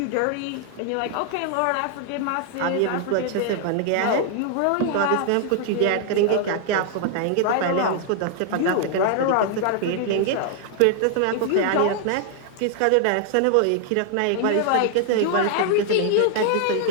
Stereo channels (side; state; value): both; different; correlation 0.00